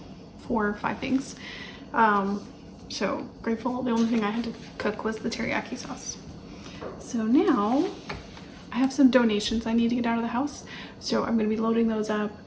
4 or 5 things. So grateful. The only thing I had to cook was the teriyaki sauce. So now I have some donations I need to get out of the house. So I'm going to be loading those up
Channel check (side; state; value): both; identical; correlation 1.00